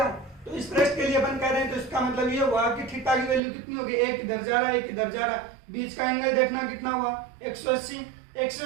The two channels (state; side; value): drops out; left; at 3.4 s